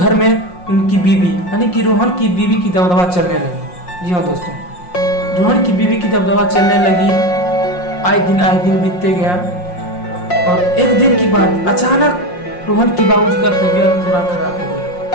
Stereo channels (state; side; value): late; right; 5.6 ms